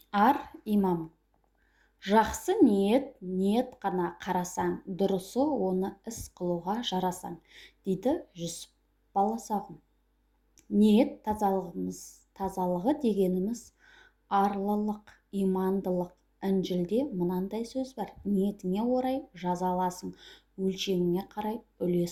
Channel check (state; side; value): identical; both; correlation 1.00